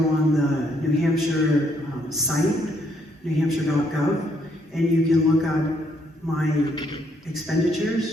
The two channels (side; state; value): both; normal; correlation 0.71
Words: the New Hampshire site, newhampshire.gov, and you can look up my